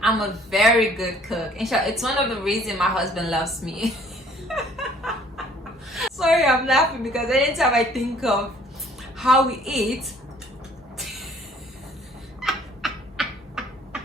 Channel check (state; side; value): normal; both; correlation 0.57